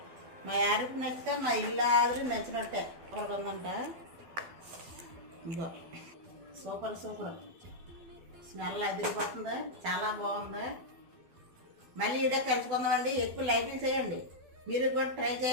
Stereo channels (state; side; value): late; left; 12 ms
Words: మా యారికి నచ్చితే మా ఇల్లు ఆదిరి నచ్చినట్టే. సూపర్గా ఉందంట. ఇదో సూపర్ సూపర్. స్మెల్ అదిరిపోతుంది, చాలా బాగుంది. మళ్ళీ ఇదే కలుసుకుందామండి. ఎక్కువ లైటింగ్ చేయండి, మీరు కూడా ట్రై